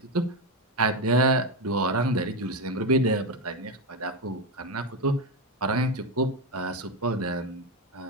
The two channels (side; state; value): both; normal; correlation 0.11